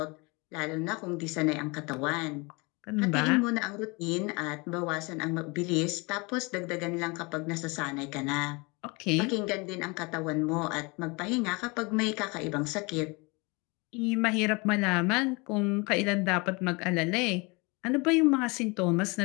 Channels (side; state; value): right; quieter; 27.6 dB